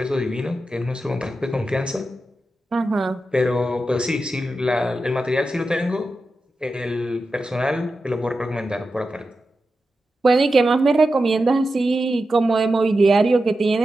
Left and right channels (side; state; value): both; normal; correlation 0.91